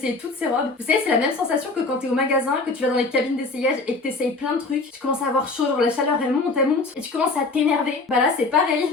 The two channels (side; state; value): right; quieter; 3.6 dB